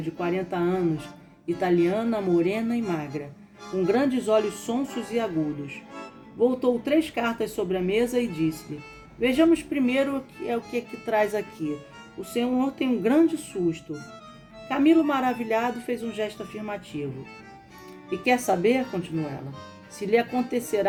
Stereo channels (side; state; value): both; identical; correlation 1.00